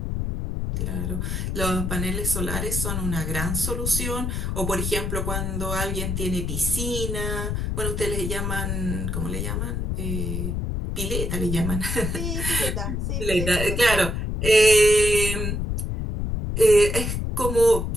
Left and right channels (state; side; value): noise; left; rumble, 2 dB below the sound